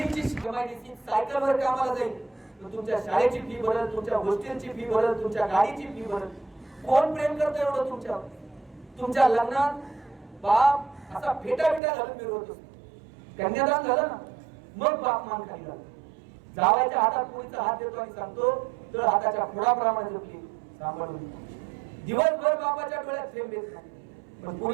सायकलवर कामाला जाईल तर तुमच्या शाळेची फी भरल, तुमच्या गोष्टींची फी भरल, तुमच्या गाडीची फी भरल. कोण प्रेम करतं एवढं तुमच्यावर? तुमच्या लग्नात बाप असा फेटा घालून मिरवत असतो. कन्यादान झालं ना, मग बाप मान खाली झाला. जावायच्या हातात पुरीचा हात देतो आणि सांगतो तर हाताच्या फोडाप्रमाणे जपली सांभाळून. दिवसभर बापाच्या डोळ्यात थेंब येत नाही, पण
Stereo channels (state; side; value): drops out; left; at 11.8 s